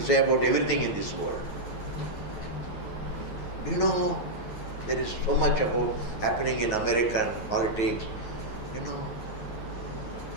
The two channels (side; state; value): right; late; 9.3 ms